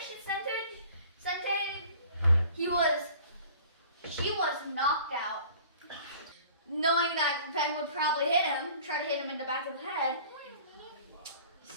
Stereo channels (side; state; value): both; inverted; correlation -0.48